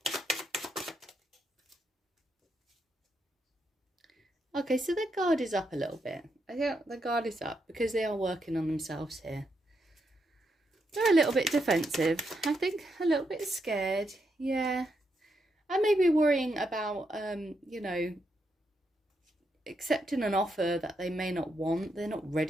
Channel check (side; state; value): both; normal; correlation 0.81